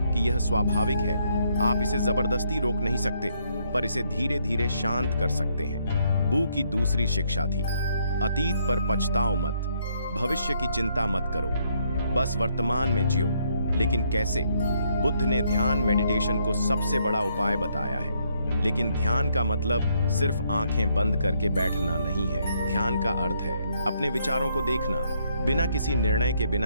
यह स्वाभाविक है। आप इसे जबरदस्ती रोक नहीं सकते, पर इसे धीरे धीरे शांत कर सकते हैं। बू की दूसरी शिक्षा थी, अतीत पर पछताओ मत, भविष्य की चिंता मत करो, बस वर्तमान में जियो। लेकिन कैसे? बुद्ध ने ध्यान मेडिटेशन को सबसे बड़ा उपाय बताया है। लेकिन ध्यान का मतलब सिर्फ आंखें बंद करके बैठना नहीं है। ध्यान का अर्थ है अपने विचारों को देखना, बिना किसी निर्णय के,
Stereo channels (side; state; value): both; inverted; correlation -0.72